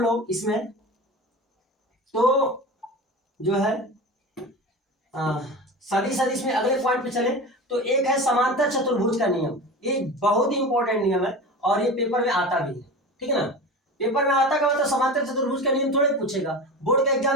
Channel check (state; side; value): normal; both; correlation 0.30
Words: लोग इसमें, तो जो है सदिश अदिश में अगले पॉइंट पे चले तो एक है समांतर चतुर्भुज का नियम। ये बहुत ही इंपॉर्टेंट नियम है और ये पेपर में आता भी है, ठीक है ना। पेपर में आता का मतलब समांतर चतुर्भुज का नियम थोड़े पूछेगा, बोर्ड का